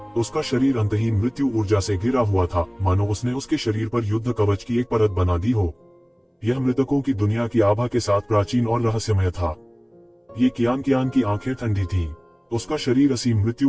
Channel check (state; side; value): identical; both; correlation 1.00